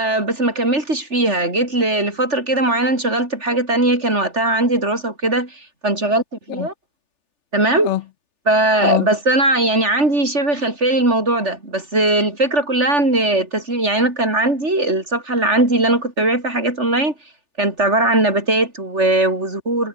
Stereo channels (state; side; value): late; left; 3.4 ms